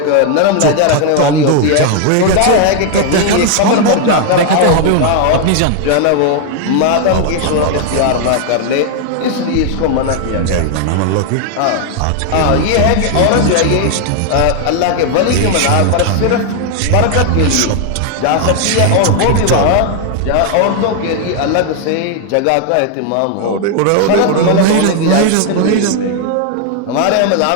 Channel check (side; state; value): both; different; correlation 0.00